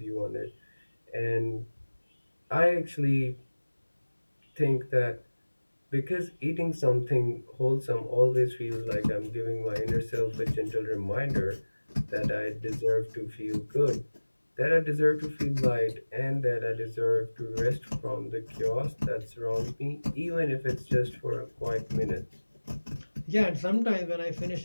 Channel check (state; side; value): inverted; both; correlation -1.00